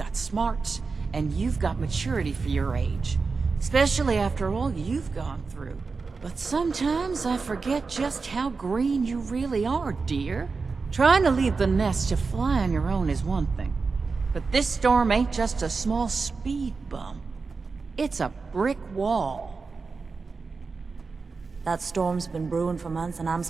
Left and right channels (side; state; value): left; quieter; 4.5 dB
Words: smarts, and you've got maturity for your age. Especially after all you've gone through. But sometimes I forget just how green you really are, dear. Trying to leave the nest to fly on your own is one thing. But this storm ain't just a small speed bump. It's a brick wall. That storm's been brewing for months and I'm